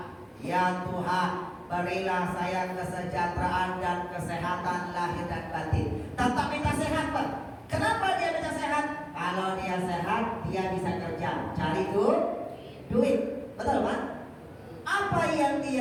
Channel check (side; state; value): both; identical; correlation 1.00